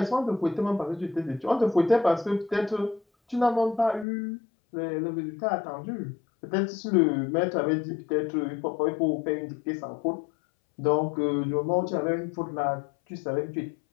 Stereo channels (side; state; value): right; drops out; at 4.0 s